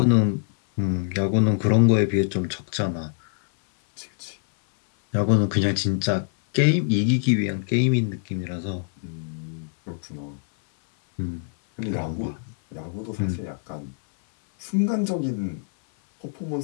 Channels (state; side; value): silent; right; 60 dB below the other